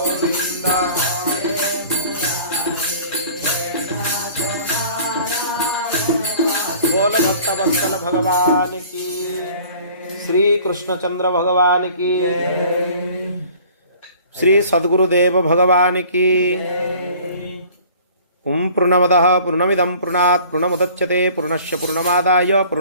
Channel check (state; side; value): inverted; both; correlation -0.49